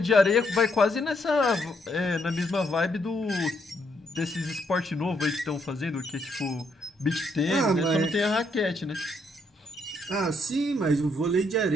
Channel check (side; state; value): both; normal; correlation 0.74